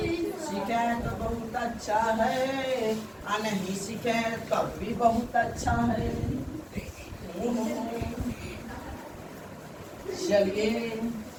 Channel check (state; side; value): identical; both; correlation 1.00